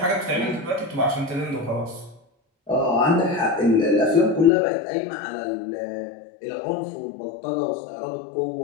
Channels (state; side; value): drops out; right; at 4.5 s